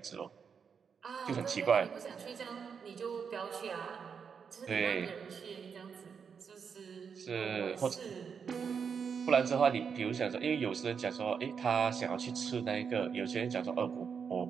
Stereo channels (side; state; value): left; quieter; 6.4 dB